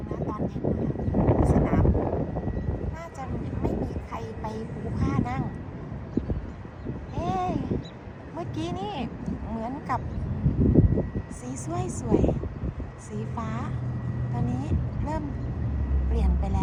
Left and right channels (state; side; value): identical; both; correlation 1.00